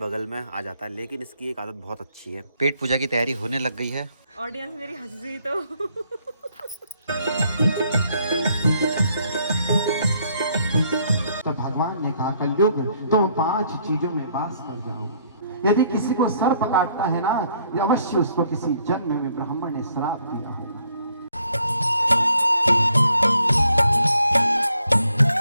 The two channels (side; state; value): both; inverted; correlation -0.68